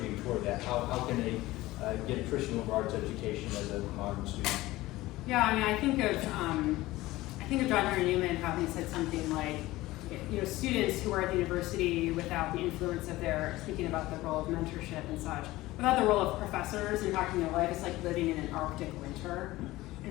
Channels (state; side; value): quieter; right; 18.1 dB